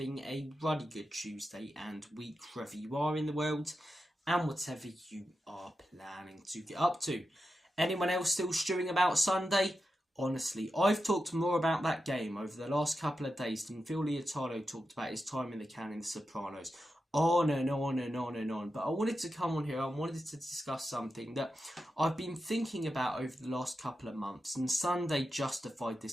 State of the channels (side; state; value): both; normal; correlation 0.89